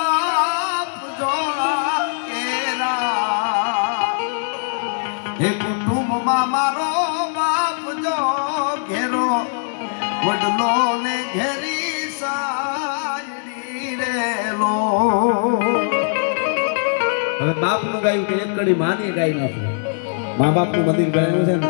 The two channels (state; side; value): silent; right; 65 dB below the other